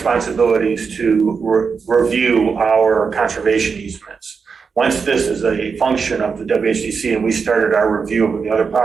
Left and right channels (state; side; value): quieter; left; 5.5 dB